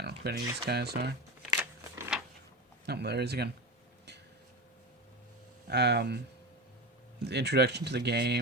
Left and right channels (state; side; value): normal; both; correlation 0.23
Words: don't know who any of these guys are. Oh, there he is again. The introduction to the